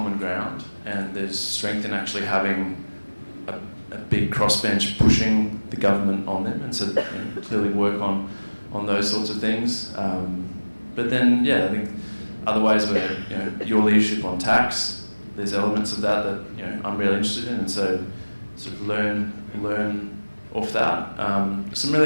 ground, and there's strength in actually having a big crossbench pushing the government on them, and so clearly work on those sorts of things. But then, I think other ways where your leadership on tax, there's elements of that I'm really interested in, and so sort of learn off that.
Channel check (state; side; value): inverted; both; correlation -1.00